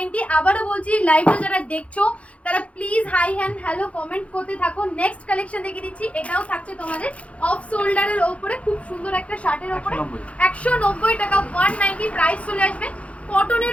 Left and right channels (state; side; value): late; right; 0.063 ms